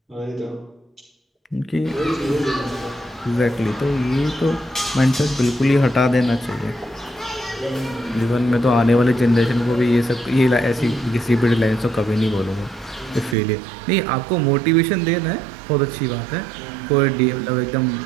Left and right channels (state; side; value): drops out; left; at 13.4 s